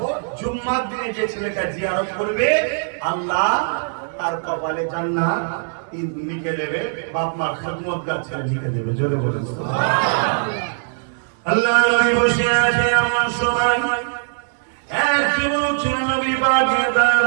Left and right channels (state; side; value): silent; left; digital silence